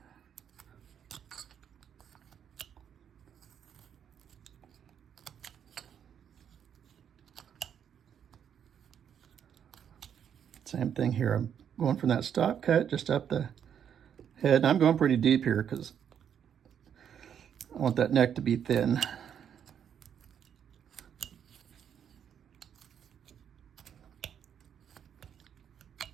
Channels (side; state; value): left; quieter; 8.6 dB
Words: Same thing here. I'm going from that stop cut just up the head. And I'm going pretty deep here because I want that neck to be thin.